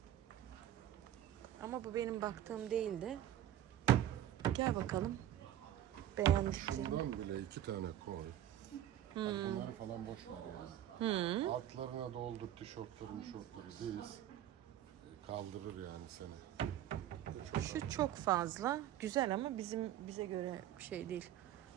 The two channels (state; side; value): quieter; left; 11.8 dB